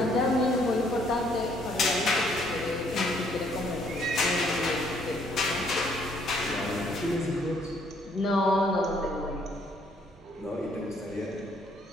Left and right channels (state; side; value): normal; both; correlation 0.66